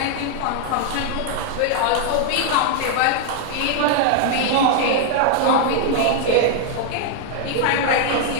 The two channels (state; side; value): different; both; correlation 0.00